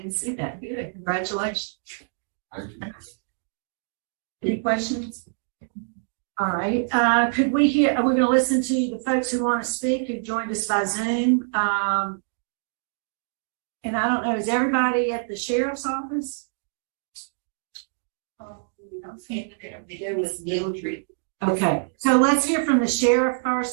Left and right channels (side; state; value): left; silent; digital silence